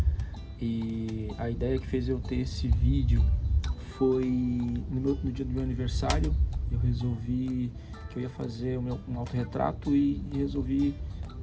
E a ideia que fez eu ter esse vídeo foi no dia do meu aniversário. Eu resolvi que eu ia fazer um autorretrato e resolvi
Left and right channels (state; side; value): identical; both; correlation 1.00